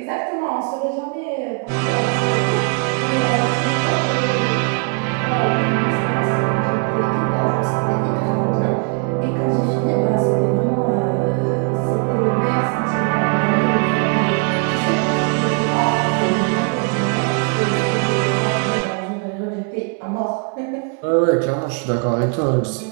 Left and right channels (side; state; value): left; quieter; 35.5 dB